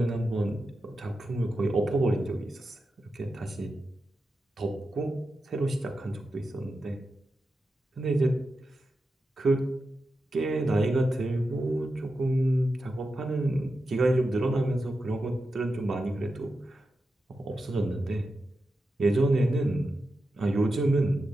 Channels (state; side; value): normal; both; correlation 0.90